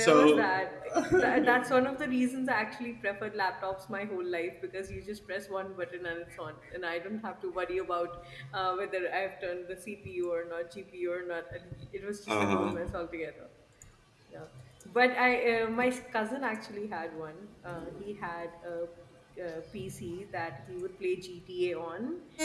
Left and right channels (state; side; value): identical; both; correlation 1.00